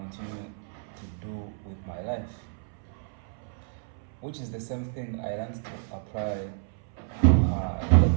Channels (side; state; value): left; silent; 58 dB below the other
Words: to do with my life, which is the same thing I learned to apply,